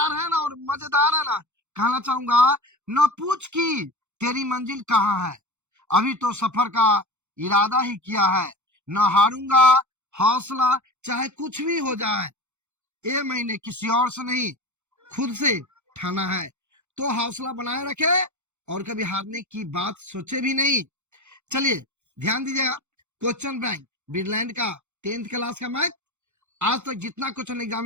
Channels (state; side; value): late; left; 0.83 ms